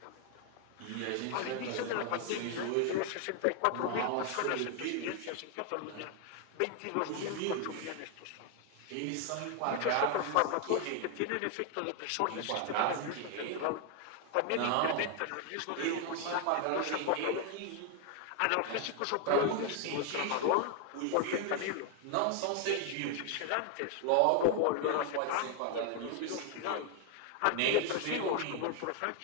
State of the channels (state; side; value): different; both; correlation 0.00